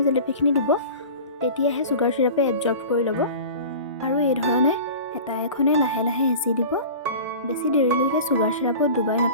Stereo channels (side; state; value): both; inverted; correlation -0.37